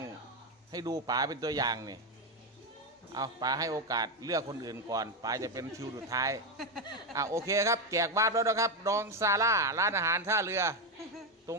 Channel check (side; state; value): both; normal; correlation 0.09